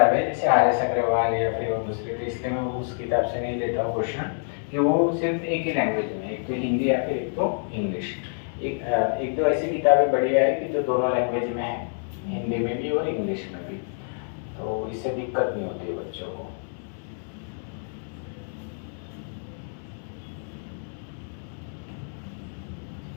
है जैसे आर एस अग्रवाल या फिर और दूसरी, तो इसलिए मैं उस किताब से नहीं लेता हूँ क्वेश्चन, कि वो सिर्फ एक ही लैंग्वेज में, एक तो हिंदी या फिर एक तो इंग्लिश। एक तो ऐसी किताबें बढ़िया है कि जो दोनों लैंग्वेज में है, हिंदी में भी और इंग्लिश में भी, तो इससे दिक्कत नहीं होती है बच्चों को।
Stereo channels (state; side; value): silent; right; digital silence